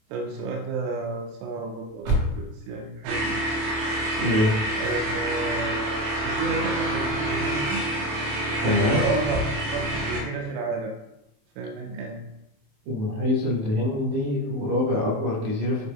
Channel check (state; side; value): late; left; 27 ms